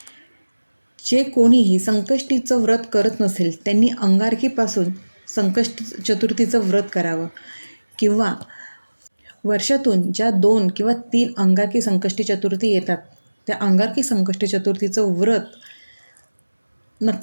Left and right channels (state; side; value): inverted; both; correlation -1.00